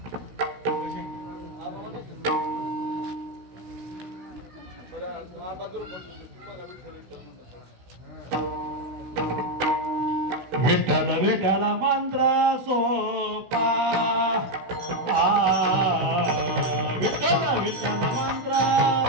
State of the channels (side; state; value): left; late; 16 ms